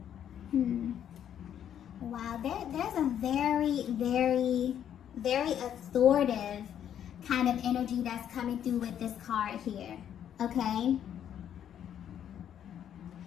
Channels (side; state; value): right; quieter; 9.7 dB